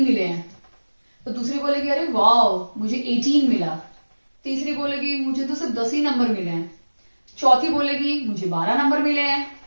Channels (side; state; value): both; inverted; correlation -1.00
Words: मिले हैं। तो दूसरी बोलेगी, अरे वाह मुझे 18 मिला। तीसरी बोलेगी, मुझे तो सिर्फ 10 ही नंबर मिले हैं। चौथी बोलेगी, मुझे 12 नंबर मिले हैं।